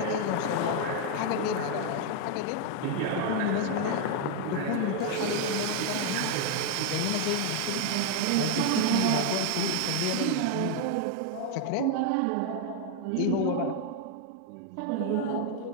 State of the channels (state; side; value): different; both; correlation 0.00